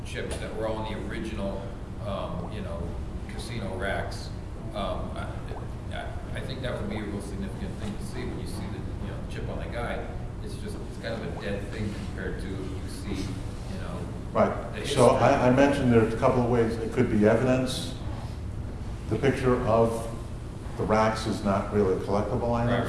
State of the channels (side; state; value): both; identical; correlation 1.00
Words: chips that were all in the original, you know, casino racks. I think that would be a real significant thing to see when you see the, you know, chip on the guide. It's just, it's kind of a dead thing compared to you see, you know. Right. So I mentioned there's a couple of ways. It could be evidence. The picture of the racks is not really a collectible item,